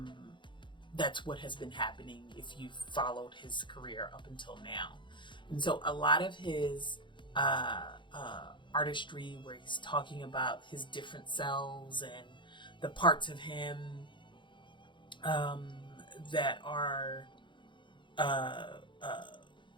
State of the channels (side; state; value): right; late; 0.23 ms